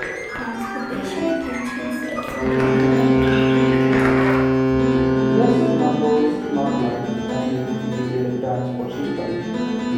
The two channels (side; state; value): both; identical; correlation 1.00